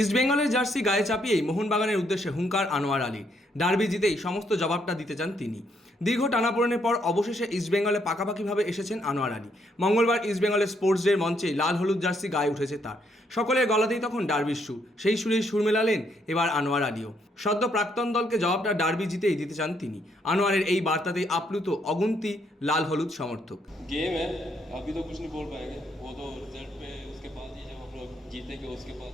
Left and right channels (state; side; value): normal; both; correlation 0.73